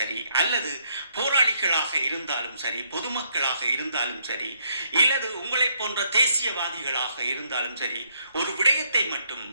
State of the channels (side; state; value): both; inverted; correlation -0.72